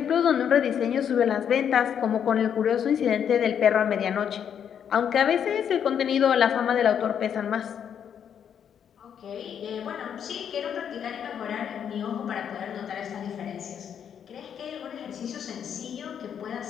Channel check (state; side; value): quieter; right; 8.4 dB